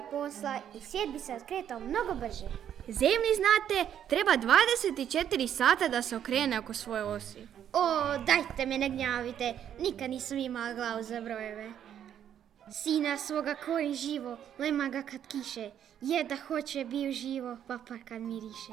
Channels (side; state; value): left; quieter; 9.7 dB